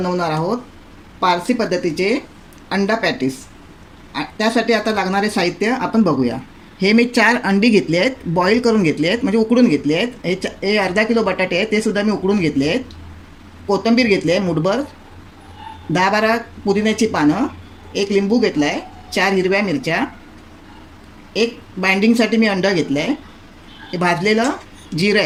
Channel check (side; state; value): both; identical; correlation 1.00